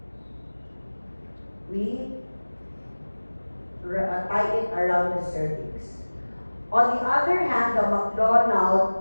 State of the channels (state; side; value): inverted; both; correlation -1.00